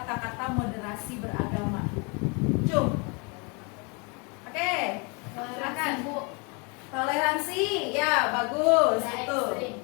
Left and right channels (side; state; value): right; quieter; 32.0 dB